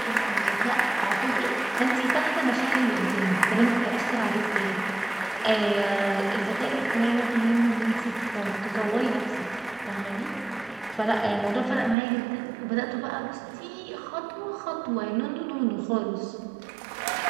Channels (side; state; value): left; drops out; at 12.0 s